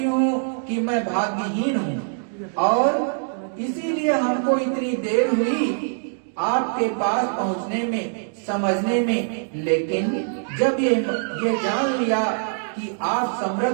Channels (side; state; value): left; silent; digital silence